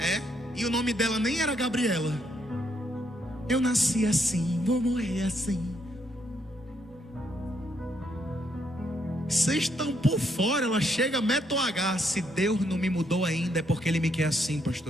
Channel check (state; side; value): normal; both; correlation 0.75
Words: E o nome dela nem era Gabriela. Eu nasci assim, vou morrer assim. Vocês estão por fora. Ela chega, mete o H: se Deus não me mudou ainda, é porque Ele me quer assim,